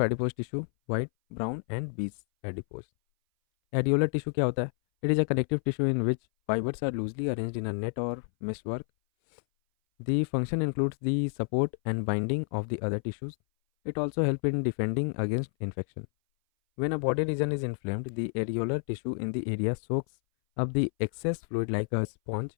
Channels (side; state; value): right; silent; 58 dB below the other